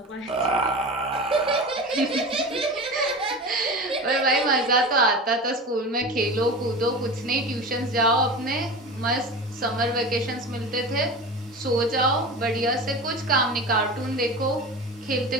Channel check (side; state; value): both; normal; correlation 0.30